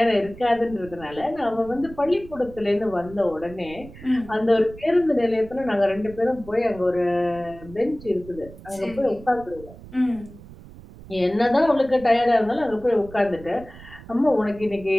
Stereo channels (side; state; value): right; noise; rumble, 18 dB below the sound